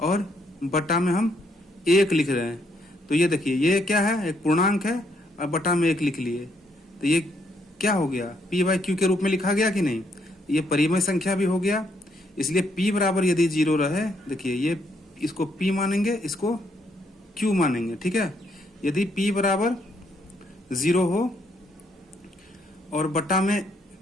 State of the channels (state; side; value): normal; both; correlation 0.73